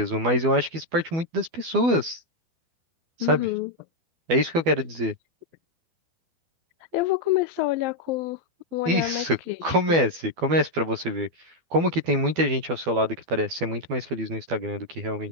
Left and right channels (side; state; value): left; late; 12 ms